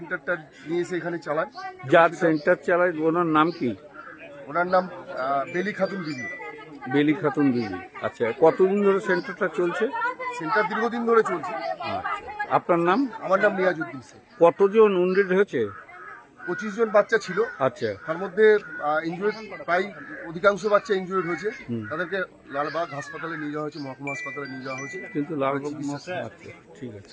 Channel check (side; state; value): both; identical; correlation 1.00